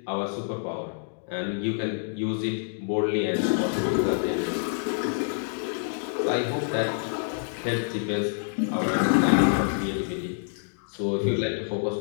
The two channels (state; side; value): silent; right; digital silence